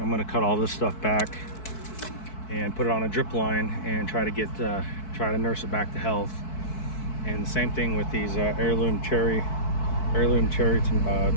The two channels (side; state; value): right; late; 4.6 ms